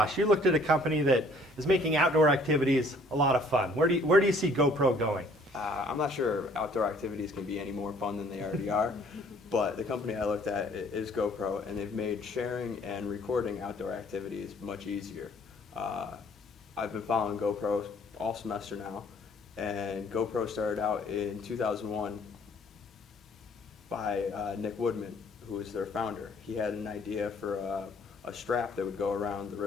You looked at a company that is making outdoor activities a lot of fun. Where do you see GoPro going? I'm not sure outdoor activities can be any more fun than they already are, but the company I looked at is GoPro, and they've made sharing and recording outdoor activities much easier. I've been following GoPro all semester now, and GoPro started out in 2001 by Nick Woodman, who is their founder. He had an idea for a strap that would go around the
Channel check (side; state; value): both; normal; correlation 0.59